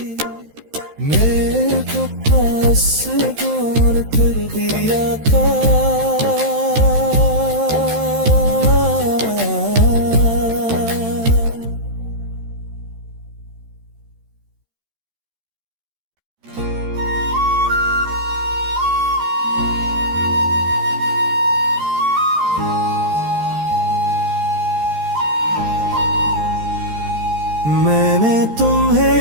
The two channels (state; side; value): late; left; 13 ms